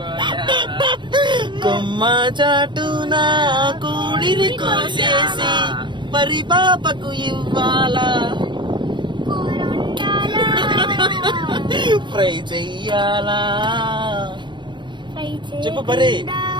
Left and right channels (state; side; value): late; left; 0.23 ms